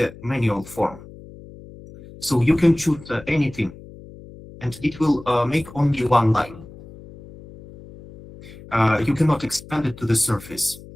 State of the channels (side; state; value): left; noise; hum, 18 dB below the sound